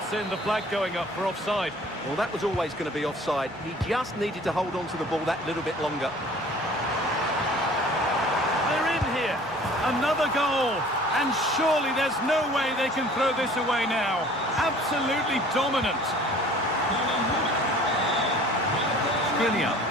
in the flag going up for offside. Well, that was always going to be offside. He just needed to hold on to the ball that little bit longer. They're in here. Another goal. And surely there's no way they can throw this away now. Absolutely dominant. Skriniar.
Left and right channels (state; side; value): normal; both; correlation 0.49